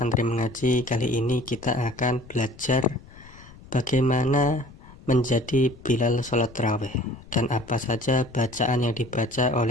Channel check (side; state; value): left; noise; rumble, 21 dB below the sound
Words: mengaji, kali ini kita akan belajar bagaimana menjadi Bilal sholat tarawih dan apa saja bacaan yang dibaca